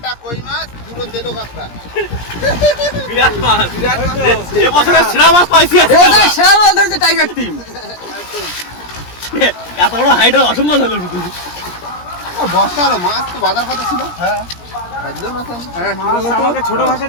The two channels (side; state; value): right; late; 17 ms